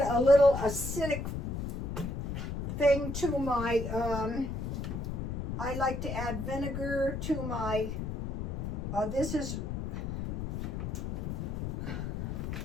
a little acidic thing to my, I like to add vinegar to my, this is,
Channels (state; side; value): noise; left; rumble, 3 dB below the sound